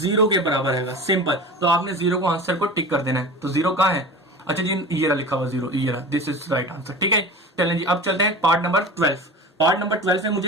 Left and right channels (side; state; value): both; normal; correlation 0.34